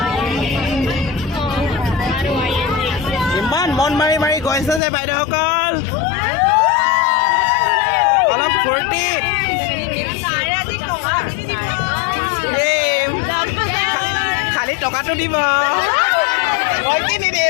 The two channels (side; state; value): right; drops out; at 4.8 s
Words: ইমান মন মাৰি মাৰি গৈছে যে বাইদেউসকল অলপ ফূৰ্তি খালি টকাটো দিব মই কি